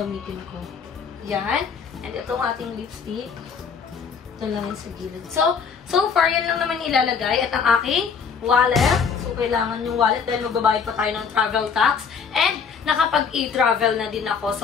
ko. Ayan. And itong ating lipstick. Ito lang yung sa gilid. So far, yan lang naman ilalagay. At ang aking wallet. So, kailangan yung wallet dahil magbabayad pa tayo ng travel tax. And, nakapag-e-travel na din ako.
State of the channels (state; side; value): quieter; right; 6.2 dB